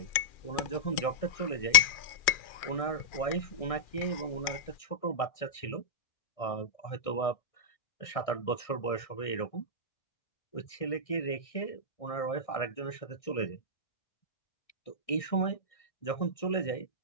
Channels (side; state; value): right; late; 2.4 ms